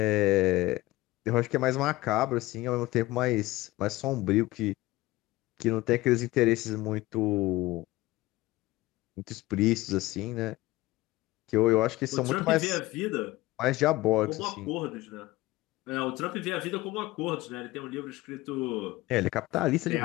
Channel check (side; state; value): right; quieter; 19.0 dB